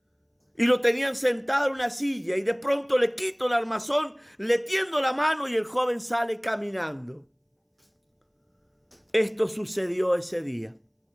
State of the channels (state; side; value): identical; both; correlation 1.00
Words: y lo tenían sentado en una silla, y de pronto le quito el armazón, le tiendo la mano y el joven sale caminando. Esto sucedió ese día.